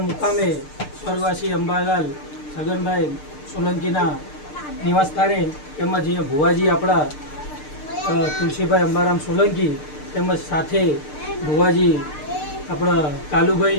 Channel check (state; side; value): late; right; 6.7 ms